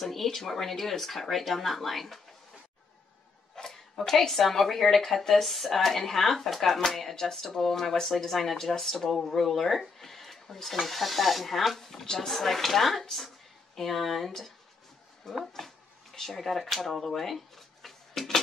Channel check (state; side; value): quieter; right; 4.5 dB